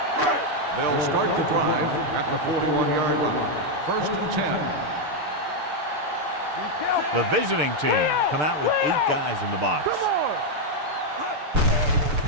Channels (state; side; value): late; left; 6.7 ms